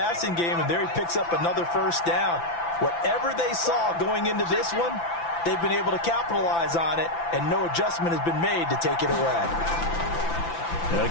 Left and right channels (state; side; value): late; right; 5.9 ms